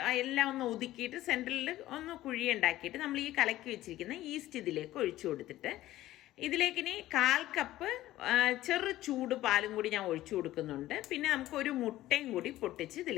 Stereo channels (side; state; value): right; quieter; 15.2 dB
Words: എല്ലാം ഒന്ന് ഒതുക്കിയിട്ട് സെൻറ്ററിൽ ഒന്ന് കുഴി ഉണ്ടാക്കിയിട്ട് നമ്മൾ ഈ കലക്കി വെച്ചിരിക്കുന്ന ഈസ്റ്റ് ഇതിലേക്ക് ഒഴിച്ചു കൊടുത്തിട്ട് ഇതിലേക്ക് ഇനി 1/4 കപ്പ് ചെറു ചൂട് പാലും കൂടി ഞാൻ ഒഴിച്ചു കൊടുക്കുന്നുണ്ട്. പിന്നെ നമുക്ക് ഒരു മുട്ടയും കൂടി പൊട്ടിച്ച്